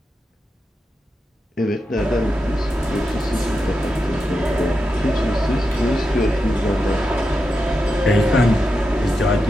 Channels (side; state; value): both; normal; correlation 0.88